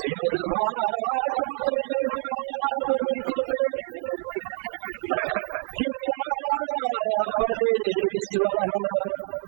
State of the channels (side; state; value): left; silent; digital silence